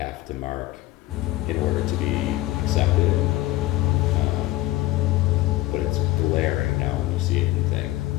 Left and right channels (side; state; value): right; quieter; 16.9 dB